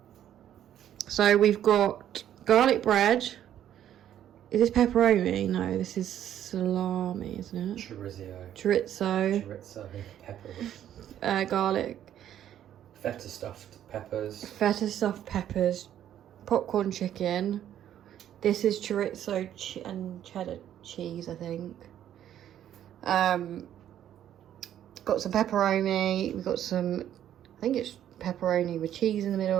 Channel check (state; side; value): quieter; left; 10.9 dB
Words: So we've got garlic bread. Is this pepperoni? No, this is salami, isn't it? Chorizo. Chorizo. Pepper. Garlic. Feta stuffed peppers. Feta stuffed peppers. Popcorn chicken. This is chorizo and cheddar cheese, I think. Got some pepperoni. We've got some, I think it's pepperoni with cheese in the